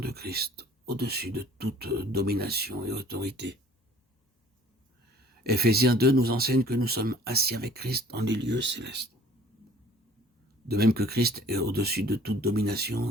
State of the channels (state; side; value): normal; both; correlation 0.53